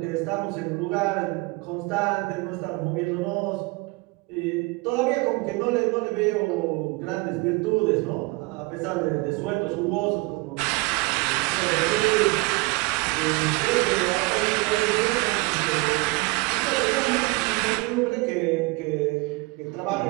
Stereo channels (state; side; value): quieter; left; 25.5 dB